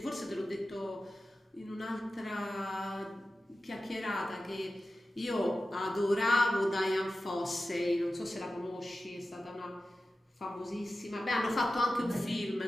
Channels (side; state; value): both; normal; correlation 0.94